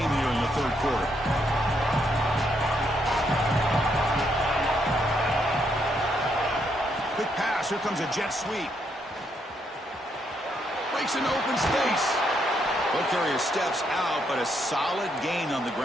here in the third quarter. Quick pass, here comes a jet sweep. Breaks into open space. Ball carrier steps out, but a solid gain on the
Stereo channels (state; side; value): normal; both; correlation 0.76